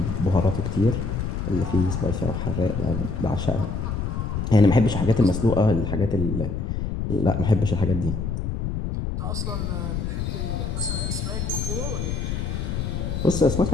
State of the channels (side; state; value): left; noise; rumble, 2 dB below the sound